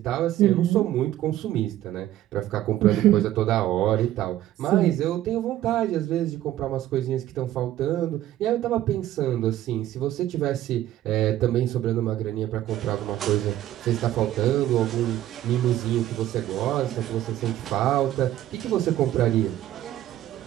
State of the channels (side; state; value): left; quieter; 13.4 dB